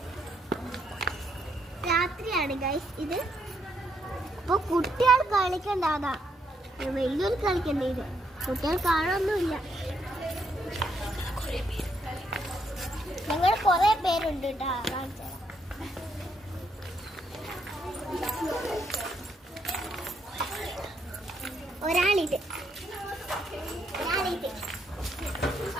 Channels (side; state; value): both; normal; correlation 0.75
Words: രാത്രിയാണ് ഗൈസ് ഇത്. അപ്പൊ കുട്ടികൾ കളിക്കണ്ടാതാ, വലിയൊരു കളിക്കണ്ട. ഇത് കുട്ടികൾ കാണാനൊന്നുമില്ല. ഞങ്ങൾ കൊറേ പേരുണ്ട് കേട്ടോ. കാണിച്ചു ഒരാളിത്